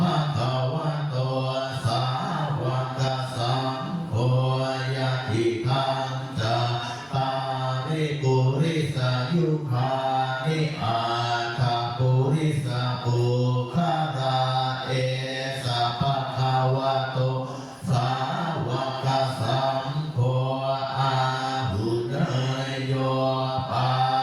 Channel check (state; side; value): identical; both; correlation 1.00